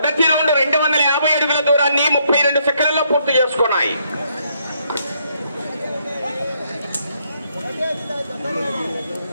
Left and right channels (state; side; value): inverted; both; correlation -0.73